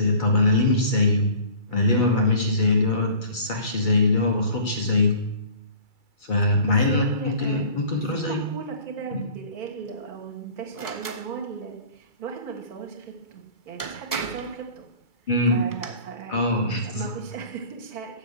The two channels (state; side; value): late; right; 2.3 ms